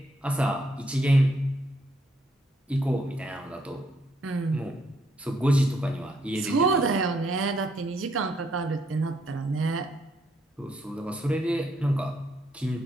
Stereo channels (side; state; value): both; normal; correlation 0.73